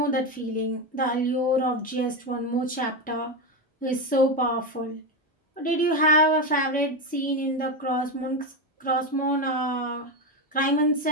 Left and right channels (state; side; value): normal; both; correlation 0.13